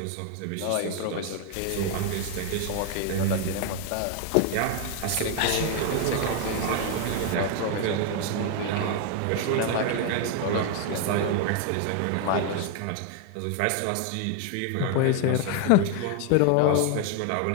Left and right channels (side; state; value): both; different; correlation 0.01